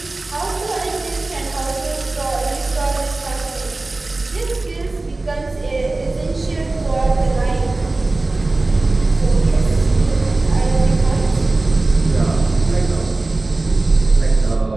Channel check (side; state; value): left; quieter; 3.1 dB